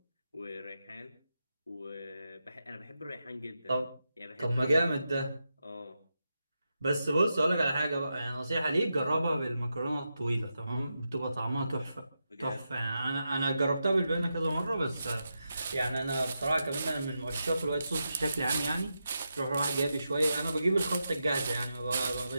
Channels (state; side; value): inverted; both; correlation -0.87